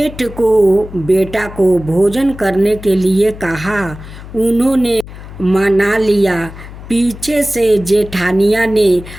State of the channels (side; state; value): left; noise; hum, 15 dB below the sound